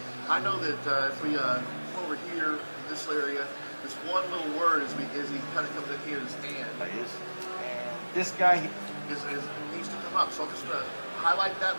I know that if we come over here in this area, this one little word as he kind of comes in here is and. This guy needs to come up. So I'm just going to highlight that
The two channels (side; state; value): both; inverted; correlation -1.00